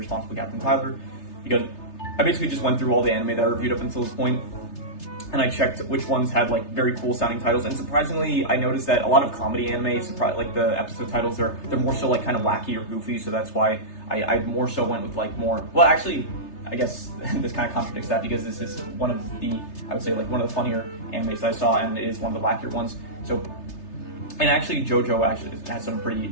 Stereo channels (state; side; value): late; right; 3.3 ms